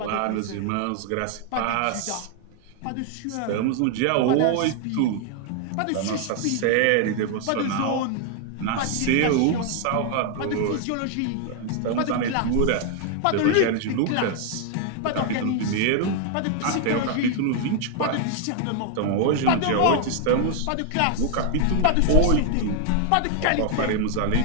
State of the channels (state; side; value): different; both; correlation 0.00